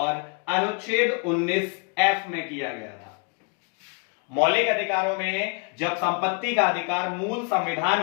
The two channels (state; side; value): quieter; right; 35.7 dB